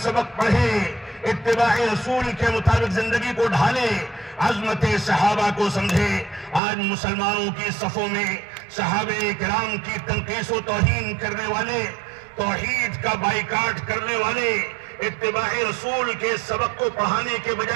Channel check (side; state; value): left; drops out; at 6.6 s